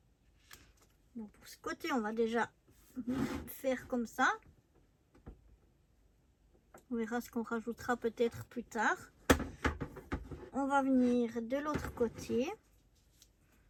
Bon, pour ce côté, on va déjà faire comme ça. On verra ce qu'on rajoutera peut-être plus tard. On va venir de l'autre côté.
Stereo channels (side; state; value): both; identical; correlation 1.00